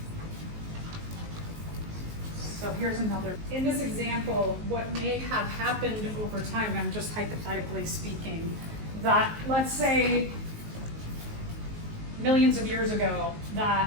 So here's another. In this example, what may have happened over time, and I'm just hypothetically speaking, that let's say millions of years ago, that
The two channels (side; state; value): left; late; 19 ms